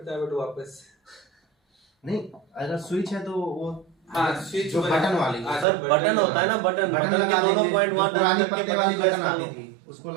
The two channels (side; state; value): left; drops out; at 5.7 s